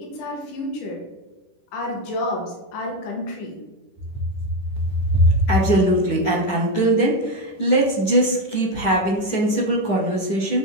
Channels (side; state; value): right; late; 10 ms